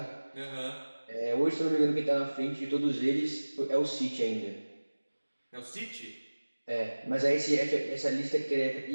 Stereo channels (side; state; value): both; inverted; correlation -1.00